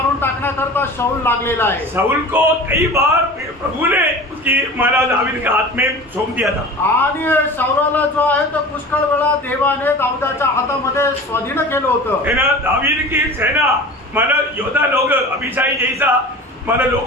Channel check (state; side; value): normal; both; correlation 0.37